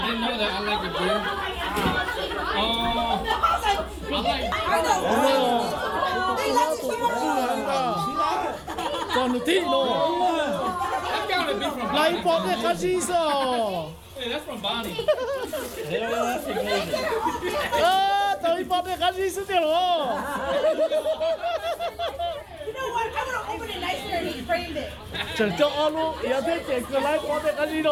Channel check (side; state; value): both; identical; correlation 1.00